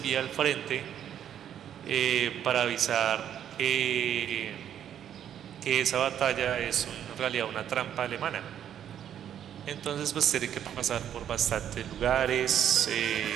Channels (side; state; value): left; quieter; 9.9 dB